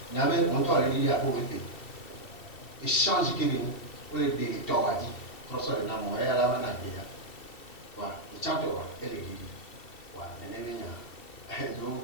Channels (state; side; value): late; right; 2.7 ms